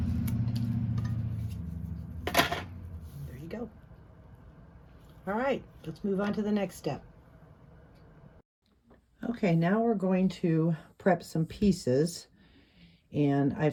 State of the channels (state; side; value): identical; both; correlation 1.00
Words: There you go. All right, let's move on to the next step. Okay, now we're going to prep some pieces, and